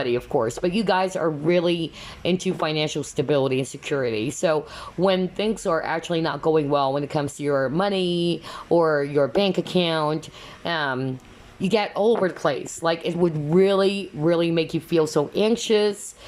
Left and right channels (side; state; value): both; identical; correlation 1.00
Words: of course, but you guys are really into financial stability and security. So when things are actually not going well when it comes to your money or your bank account, you get all over the place. Like, it would really, really make you feel so anxious